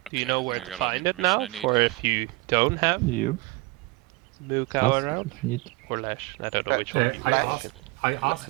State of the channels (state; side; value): quieter; left; 23.7 dB